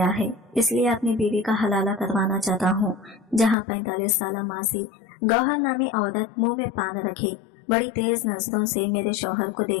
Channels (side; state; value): right; drops out; at 3.6 s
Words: है, इसलिए अपनी बीवी का हलाला करवाना चाहता हूँ। जहाँ 45 साल मासी गौहर नामी औरत मुंह में पान रखे बड़ी तेज नजरों से मेरे शौहर को